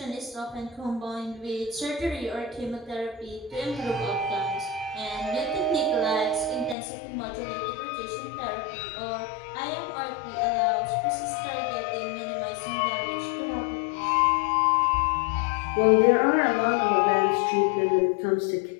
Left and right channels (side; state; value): right; drops out; at 6.8 s